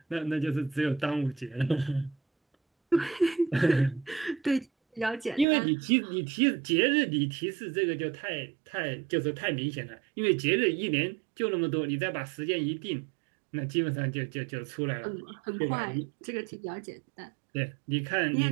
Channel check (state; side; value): drops out; left; at 5.5 s